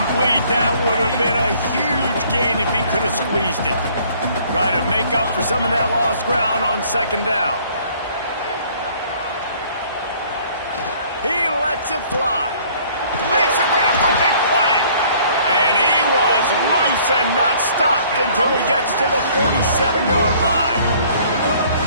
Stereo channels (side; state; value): both; inverted; correlation -0.57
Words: That would have been a huge gain if he could have squeezed it. Try to make up for some of that lost ground on second down. He lets it fly. Makes a grab for a big play. And he was loose and not stopped until he gets to the 47-yard line.